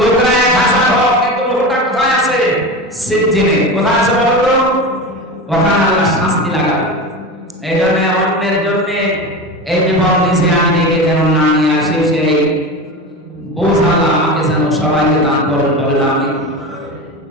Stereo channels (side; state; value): both; normal; correlation 0.26